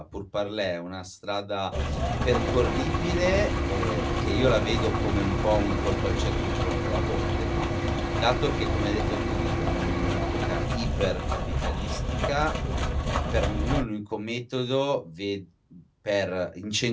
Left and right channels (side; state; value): both; identical; correlation 1.00